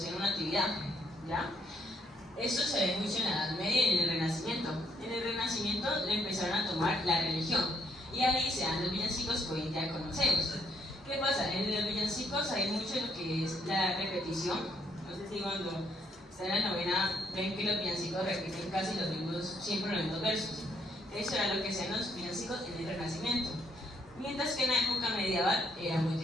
una actividad, ¿ya? Esto se ve mucho en la Edad Media y en el Renacimiento. En el Renacimiento le empezaron a tomar la religión y ahí se dan los villancicos que hoy en día conocemos. ¿Qué pasa? En los villancicos hay mucho lo que es la repetición. No sé si cuando están en la novena ven que los villancicos repiten casi siempre los mismos versos. Eso era lo que hacían los villancicos en el Renacimiento. Mientras que en la época medieval era muy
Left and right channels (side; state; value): both; normal; correlation 0.72